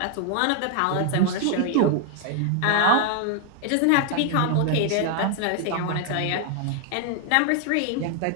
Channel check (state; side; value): different; both; correlation 0.00